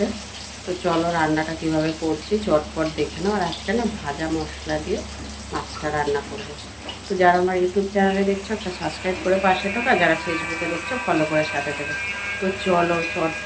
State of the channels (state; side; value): identical; both; correlation 1.00